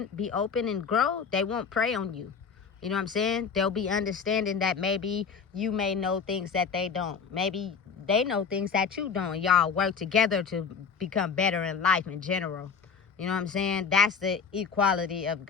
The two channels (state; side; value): quieter; right; 6.0 dB